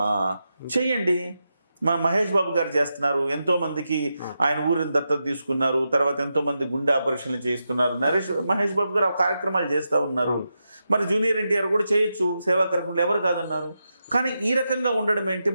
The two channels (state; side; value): inverted; both; correlation -0.88